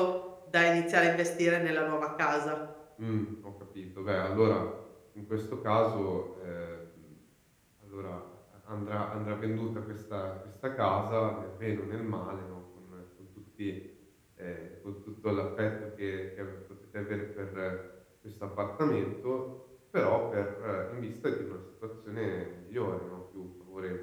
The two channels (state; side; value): identical; both; correlation 1.00